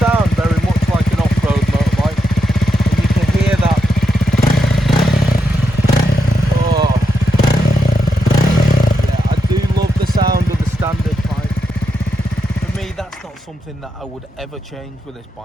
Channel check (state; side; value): normal; both; correlation 0.84